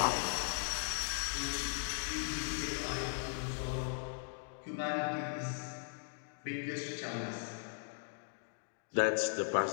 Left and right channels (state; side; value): silent; right; digital silence